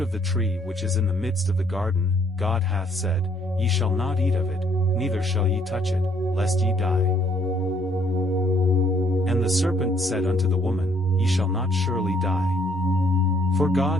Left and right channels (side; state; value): both; normal; correlation 0.65